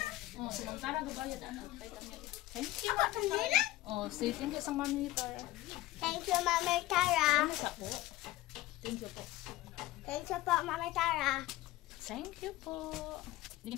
Oh, sinantara gabayad anak. Thank you. Oh, say thank you sa Mami Tara. Thank you, Mami Tara. Ano sa po? Thank you po. Thank you po, Mami Tara. Thank you po.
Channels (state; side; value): quieter; right; 16.9 dB